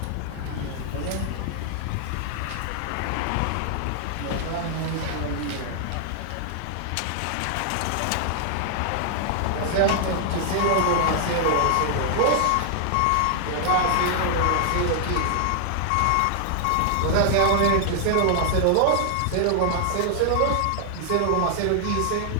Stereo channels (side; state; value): both; different; correlation 0.00